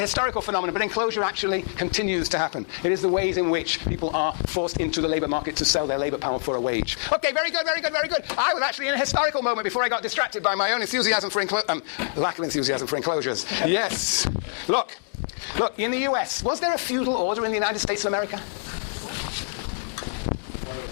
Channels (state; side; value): silent; right; digital silence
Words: historical phenomenon, but enclosure actually continues to happen. It is the ways in which people are forced into the labour market to sell their labour power for a wage. Okay, very good. I was actually in a historical moment before I got distracted by my own enthusiasm for lack of enthusiasm for enclosures. Yes. Look, in the US, was there a feudal order in the United States of America?